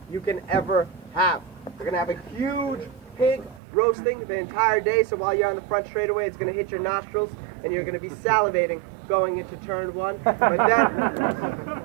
you can ever have. We're going to have a huge pig roasting the entire day, so while you're on the front straightaway, it's going to hit your nostrils, and you're going to be salivating going into turn 1. But then,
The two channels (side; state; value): left; drops out; at 3.6 s